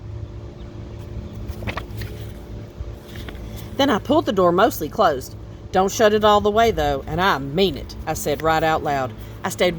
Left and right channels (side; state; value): both; identical; correlation 1.00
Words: Then I pulled the door mostly closed. Don't shut it all the way, though, and I mean it, I said right out loud. I